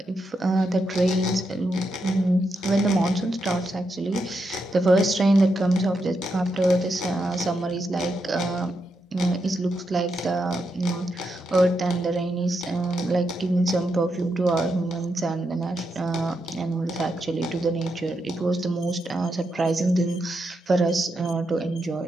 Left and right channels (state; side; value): normal; both; correlation 0.83